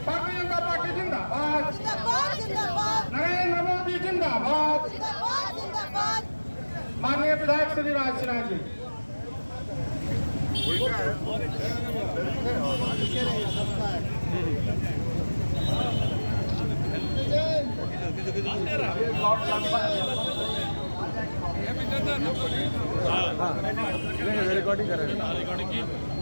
भारतीय जनता पार्टी जिंदाबाद, नरेंद्र मोदी जिंदाबाद। माननीय विधायक श्री राज सिन्हा जी। रिकॉर्डिंग कर रहे हैं।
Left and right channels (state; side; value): inverted; both; correlation -1.00